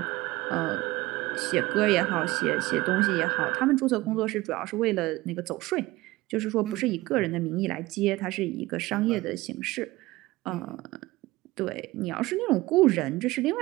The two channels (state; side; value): quieter; left; 19.4 dB